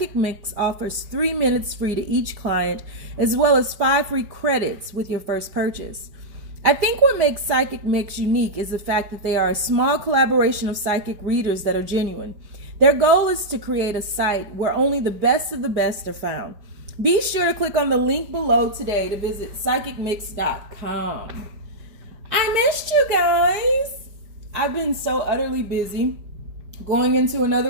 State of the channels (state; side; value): late; left; 4.5 ms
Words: Mix offers 3 minutes free to each client, as well as 5 free credits with your first purchase. I think what makes Psychic Mix unique is the fact that they are a small collaboration of psychic readers that are genuine. Their goal is to create a site where only the best of the best are found. Be sure to click on the link below today to visit psychicmix.com. I missed you guys. I've been so utterly busy. Going into